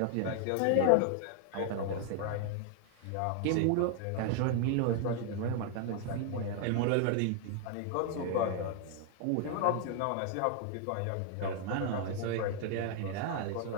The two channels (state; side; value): different; both; correlation 0.00